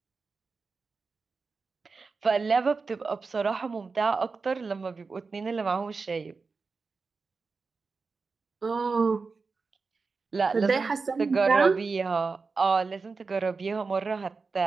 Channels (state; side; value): quieter; left; 4.5 dB